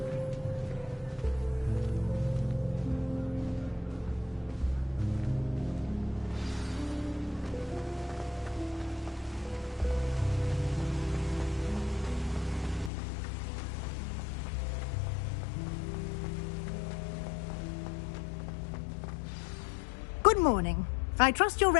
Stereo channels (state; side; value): drops out; right; at 12.9 s